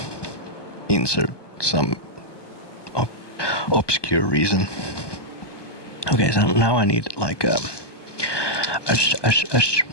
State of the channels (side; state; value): right; late; 1.2 ms